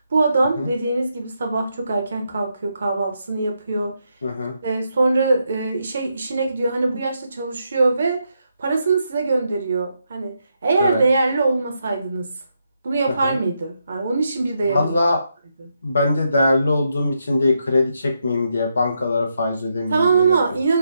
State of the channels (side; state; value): both; inverted; correlation -0.81